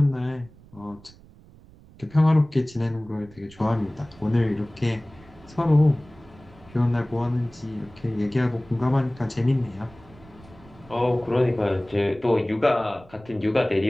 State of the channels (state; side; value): noise; right; rumble, 24 dB below the sound